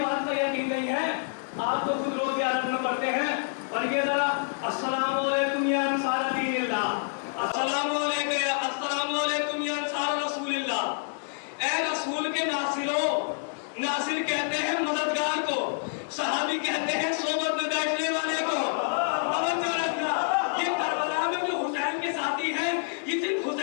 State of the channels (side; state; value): right; silent; digital silence